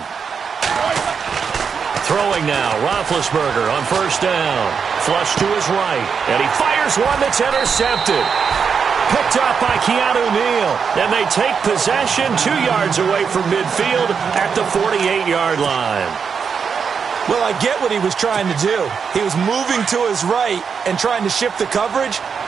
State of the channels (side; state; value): left; quieter; 6.3 dB